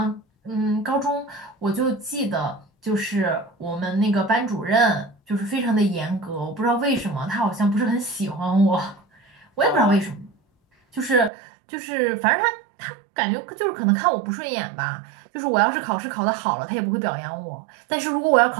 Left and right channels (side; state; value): left; drops out; at 11.3 s